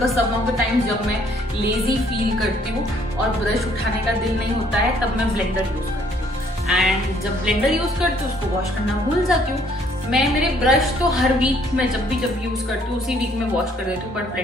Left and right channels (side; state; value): both; normal; correlation 0.63